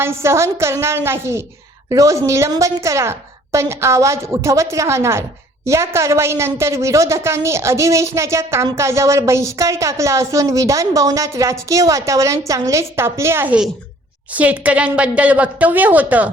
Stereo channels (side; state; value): both; normal; correlation 0.56